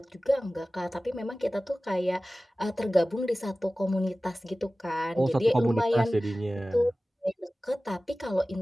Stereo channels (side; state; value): both; normal; correlation 0.97